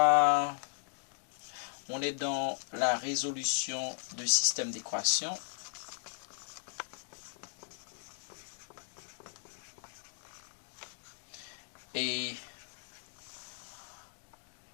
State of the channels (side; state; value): right; silent; digital silence